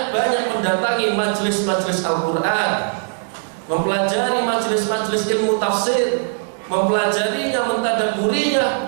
mendatangi majelis-majelis Al-Quran, mempelajari majelis-majelis ilmu tafsir, mempelajarinya, mentadabburinya,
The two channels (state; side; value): silent; left; digital silence